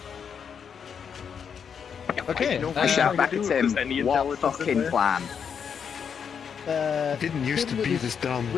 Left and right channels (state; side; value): quieter; right; 7.1 dB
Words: Okay. I shout back at Is there him, any what intelligence in fucking there? plan? It didn't used to Tim with be his- this dumb.